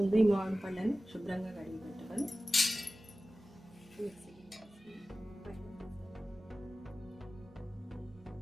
ఈ మామిడి పళ్ళని శుభ్రంగా కడిగి పెట్టుకొని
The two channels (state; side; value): normal; both; correlation 0.96